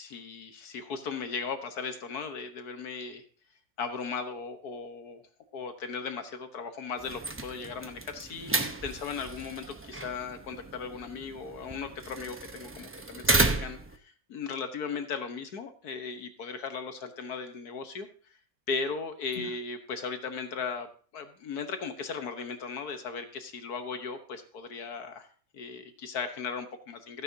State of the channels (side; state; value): both; normal; correlation 0.13